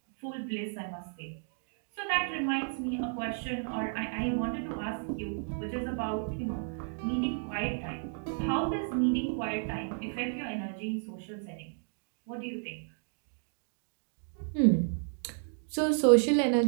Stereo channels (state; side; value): silent; left; 56 dB below the other